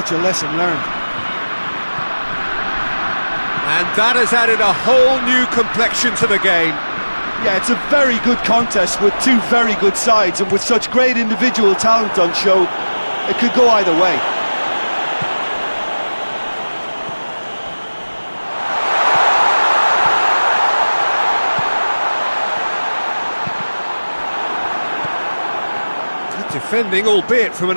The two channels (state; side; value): inverted; both; correlation -1.00